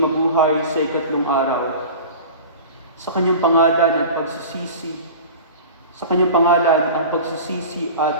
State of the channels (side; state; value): both; inverted; correlation -0.36